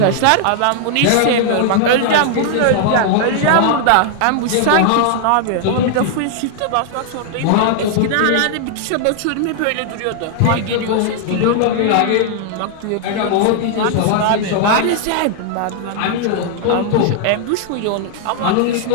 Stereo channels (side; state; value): both; different; correlation 0.00